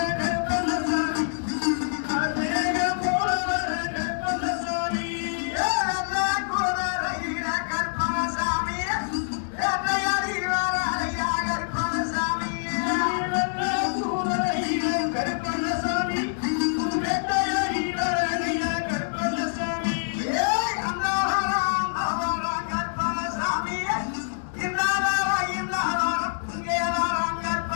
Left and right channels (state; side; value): silent; right; digital silence